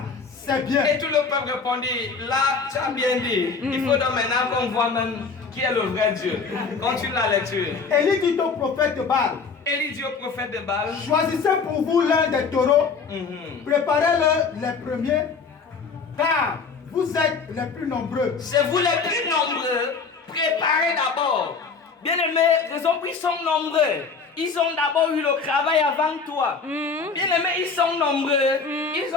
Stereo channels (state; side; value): quieter; right; 5.0 dB